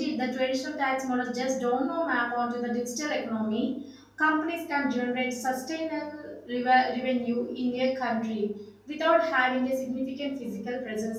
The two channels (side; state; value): both; identical; correlation 1.00